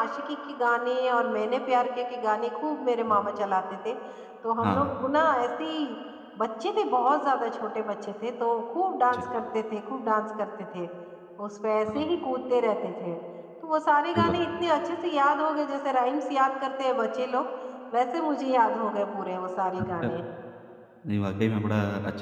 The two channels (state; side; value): identical; both; correlation 1.00